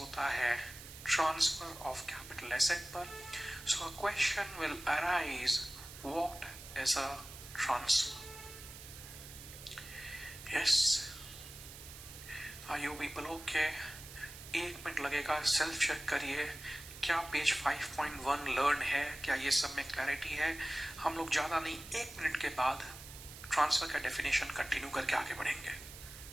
है ट्रांसफर ऑफ कैपिटल एसेट पर। So a question will arise, what is a transfer? Yes, are you people okay? 1 minute लगेगा, सेल्फ चेक करिए क्या पेज 5.1 लर्न है, क्या ये सब में क्लैरिटी है। हम लोग ज्यादा नहीं, 1 मिनट के बाद ट्रांसफर का डेफिनेशन कंटिन्यू करके आगे बढ़ेंगे।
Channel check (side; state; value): right; noise; hiss, 14 dB below the sound